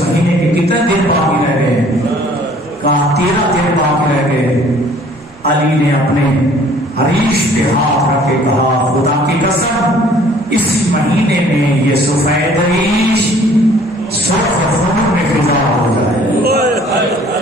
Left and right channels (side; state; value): both; normal; correlation 0.55